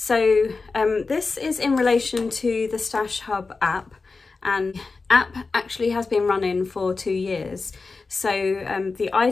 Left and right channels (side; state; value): right; quieter; 4.1 dB